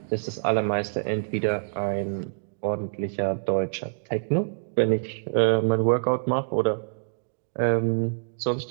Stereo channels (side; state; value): left; silent; digital silence